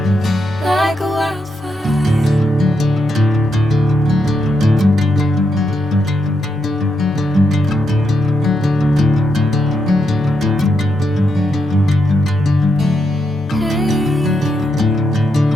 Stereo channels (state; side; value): normal; both; correlation 0.82